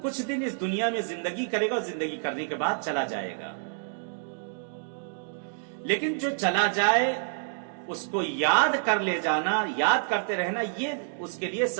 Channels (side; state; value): left; silent; digital silence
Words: کچھ دن اس دنیا میں زندگی کرے گا اور زندگی کرنے کے بعد چلا جائے گا لیکن جو چلا جائے اس کو یاد کر لے جانا یاد کرتے رہنا یہ اس کے لیے